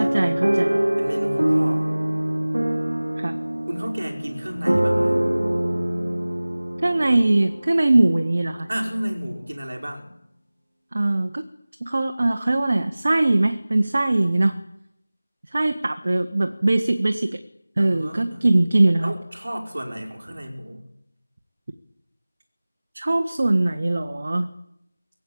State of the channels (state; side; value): inverted; both; correlation -0.99